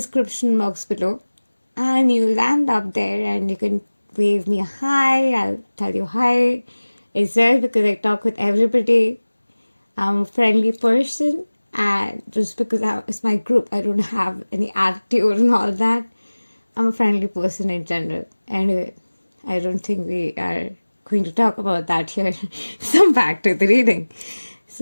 box below, and you'll land up there and you can wave me a hi. I'll tell you hi. It's there because I talk with everybody. I'm a friendly person, and just because it's my group, I don't have any attitude and all that. I'm a friendly person in general. Anyway, I don't think we are going to talk about that here. So back to the reading.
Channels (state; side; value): inverted; both; correlation -1.00